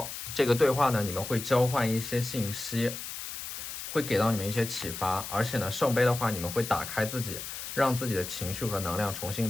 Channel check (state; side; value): noise; left; hiss, 8 dB below the sound